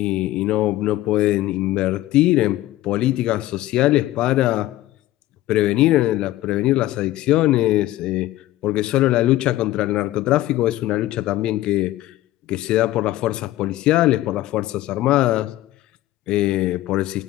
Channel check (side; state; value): right; quieter; 15.6 dB